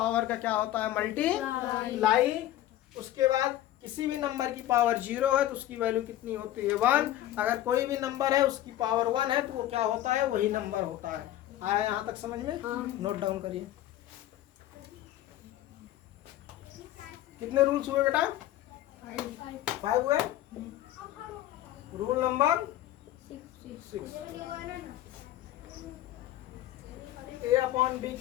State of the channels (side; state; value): right; quieter; 13.8 dB